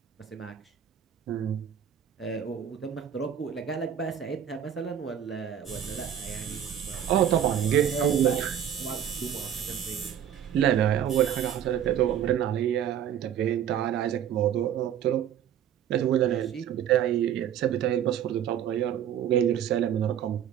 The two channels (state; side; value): quieter; left; 9.6 dB